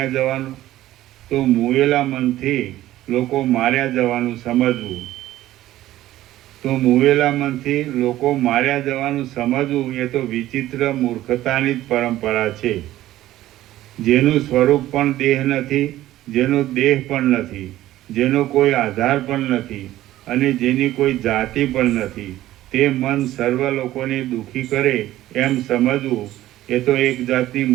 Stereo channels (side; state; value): left; quieter; 14.7 dB